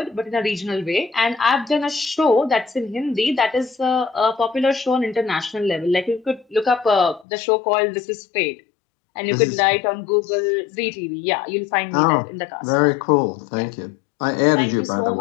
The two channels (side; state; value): right; drops out; at 7.2 s